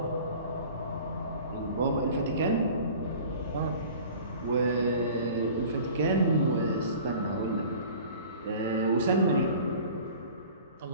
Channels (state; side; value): inverted; both; correlation -0.44